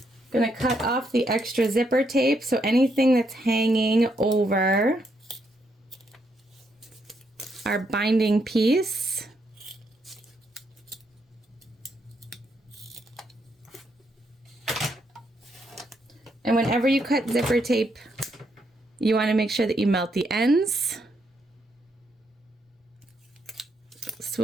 Gonna cut off the extra zipper tape, so anything that's hanging over our binding piece. And whenever you cut zipper tape, you want to make sure that you melt the ends. So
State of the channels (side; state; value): both; normal; correlation 0.77